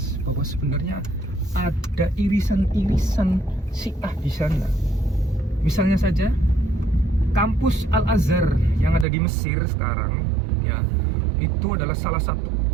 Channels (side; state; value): left; drops out; at 9.1 s